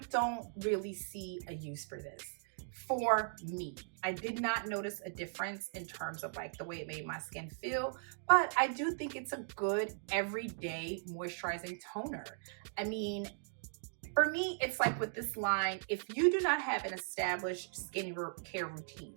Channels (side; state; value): left; silent; digital silence